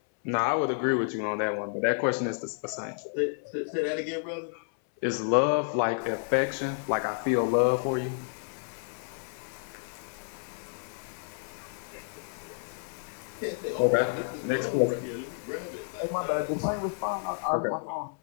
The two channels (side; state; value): right; silent; 58 dB below the other